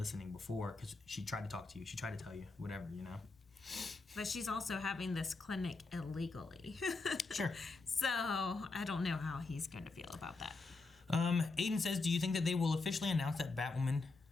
before because she tried to talk to you. She tried to tell you, whatever, you know? But she's also having this clinic illegally. Sure. So I don't know how he's going to feel about that. Aiden says, do you think that they will officially announce that Batwoman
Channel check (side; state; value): right; quieter; 3.8 dB